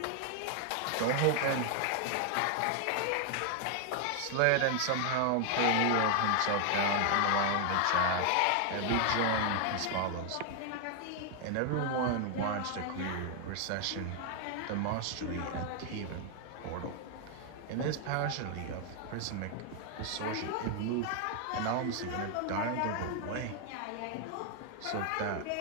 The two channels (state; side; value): different; both; correlation 0.00